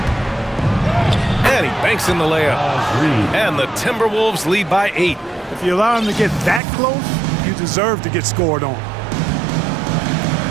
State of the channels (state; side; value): drops out; left; at 6.6 s